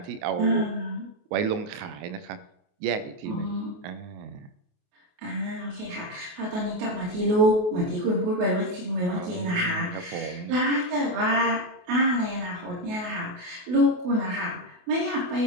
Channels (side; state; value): left; late; 28 ms